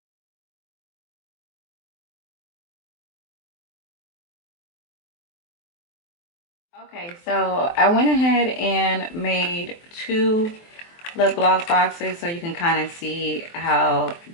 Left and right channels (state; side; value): late; right; 23 ms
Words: Okay, so I went ahead and made two lip gloss boxes so you can kind of see how